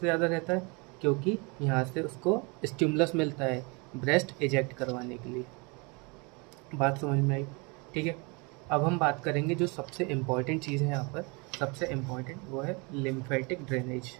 ज़्यादा रहता है? क्योंकि यहाँ से उसको स्टिमुलस मिलता है ब्रेस्ट इजेक्ट करवाने के लिए। बात समझ में आई? ठीक है, अब हम बात करेंगे जो सबसे इम्पॉर्टेंट चीज़ है यहाँ पर, सबसे इम्पॉर्टेंट वो है lymphatic drainage.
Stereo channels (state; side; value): quieter; left; 29.5 dB